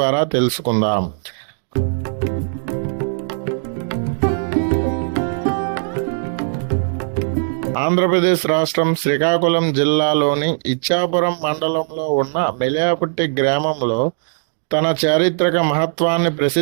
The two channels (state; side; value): silent; left; digital silence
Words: తెలుసుకుందాం. ఆంధ్రప్రదేశ్ రాష్ట్రం శ్రీకాకుళం జిల్లాలోని ఇచ్చాపురం మండలంలో ఉన్న మెలయపుట్టి గ్రామంలో తన చారిత్రక మహత్వాన్ని